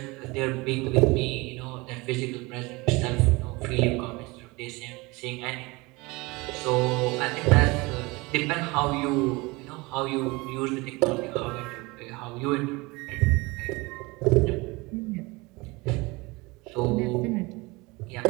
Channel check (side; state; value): left; quieter; 24.2 dB